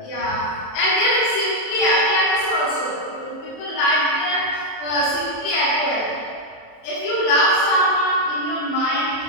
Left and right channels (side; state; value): right; late; 27 ms